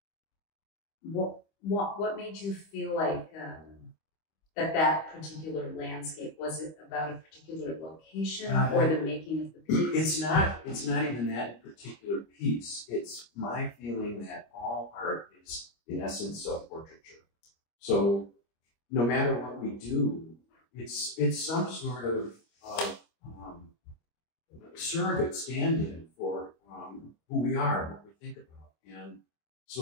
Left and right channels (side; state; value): right; late; 25 ms